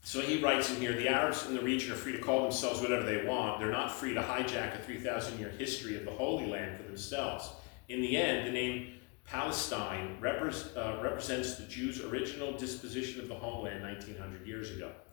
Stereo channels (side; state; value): right; quieter; 29.2 dB